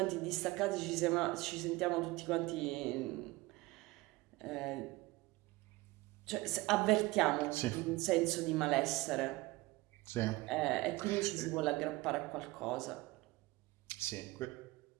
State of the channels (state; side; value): quieter; left; 20.9 dB